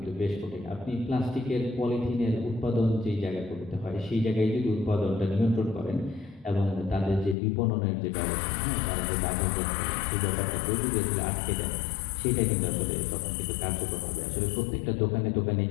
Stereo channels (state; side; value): drops out; right; at 7.4 s